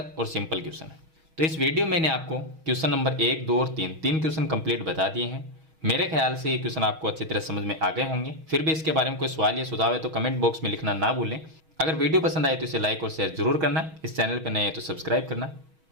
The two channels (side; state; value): left; late; 6.3 ms